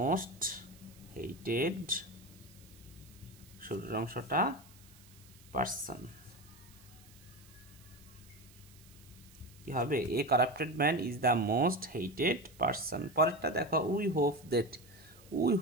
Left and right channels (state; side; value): noise; right; hiss, 24 dB below the sound